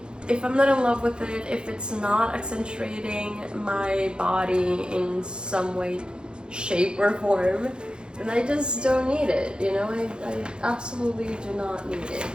if I'm not in love with it, if it's not accentuating my body in some way, shape, or form, then I just don't need it, you know? I absolutely do not need it.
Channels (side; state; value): left; late; 0.050 ms